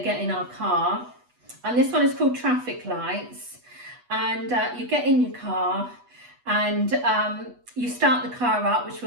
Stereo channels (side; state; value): left; late; 8.2 ms